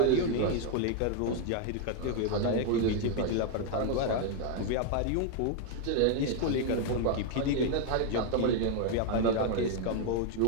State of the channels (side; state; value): both; different; correlation 0.00